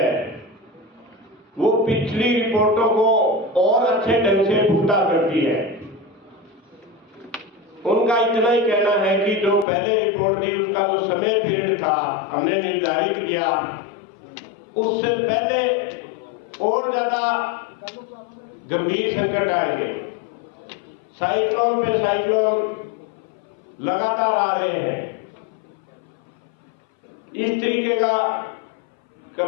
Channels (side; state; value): right; drops out; at 9.7 s